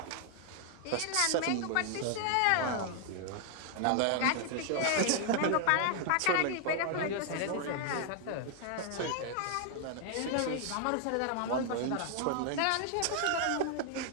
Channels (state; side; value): different; both; correlation 0.00